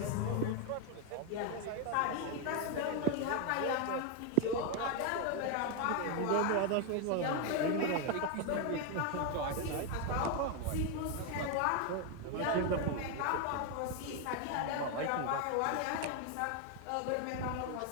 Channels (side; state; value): both; different; correlation 0.01